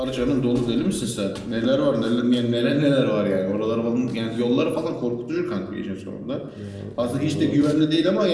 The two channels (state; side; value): identical; both; correlation 1.00